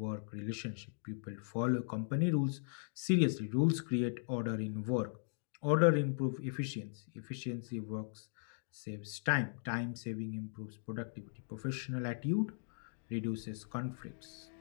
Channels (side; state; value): right; silent; digital silence